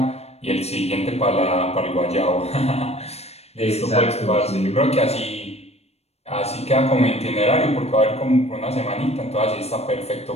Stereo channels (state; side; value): late; right; 0.31 ms